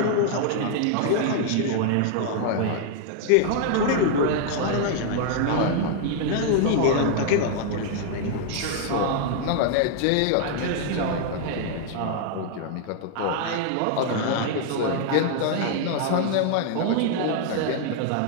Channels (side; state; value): both; different; correlation 0.00